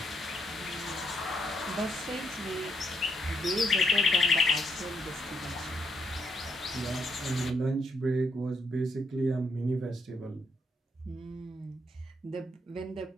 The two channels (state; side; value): normal; both; correlation 0.75